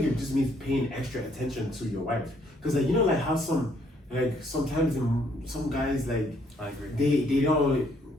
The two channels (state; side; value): normal; both; correlation 0.68